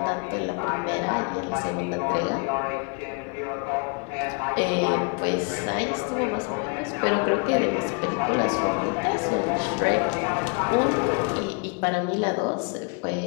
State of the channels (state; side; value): quieter; right; 37.7 dB